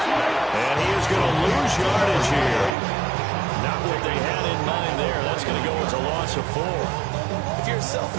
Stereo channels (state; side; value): drops out; left; at 2.8 s